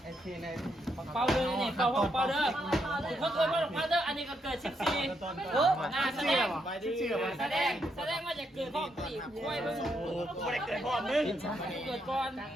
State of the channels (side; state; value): both; normal; correlation 0.78